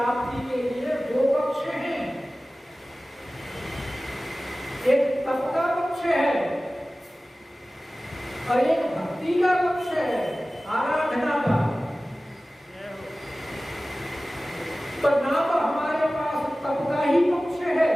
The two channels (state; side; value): normal; both; correlation 0.97